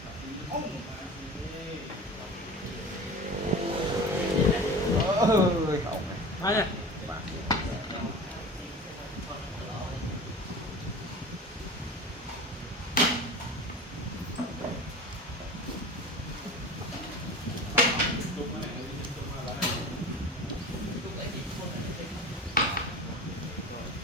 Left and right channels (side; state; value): both; normal; correlation 0.35